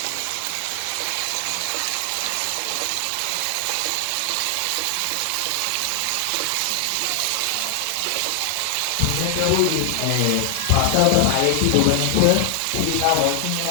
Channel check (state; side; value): different; both; correlation 0.00